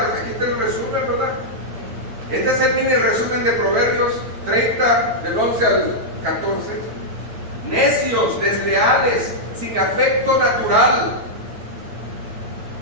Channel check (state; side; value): late; left; 8.9 ms